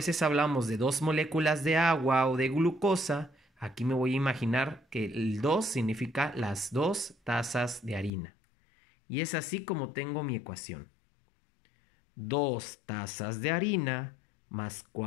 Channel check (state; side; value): drops out; right; at 8.1 s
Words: hablamos de 2 moléculas de agua o de glucosa, aquí me voy a imaginar que el 2 significa las 2 tazas de harina. Y es así como tengo mi ecuación. 2 tazas de harina más